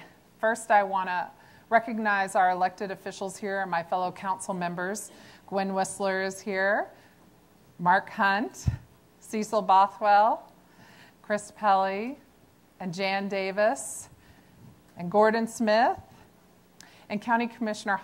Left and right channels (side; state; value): both; identical; correlation 1.00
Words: First, I wanna recognize our elected officials here and my fellow council members. Gwen Whistler is here, Mark Hunt, Cecil Bothwell, Chris Pelley, and Jan Davis, and Gordon Smith, and County Commissioner